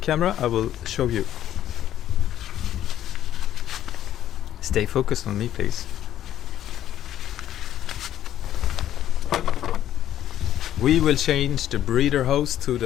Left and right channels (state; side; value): quieter; right; 11.7 dB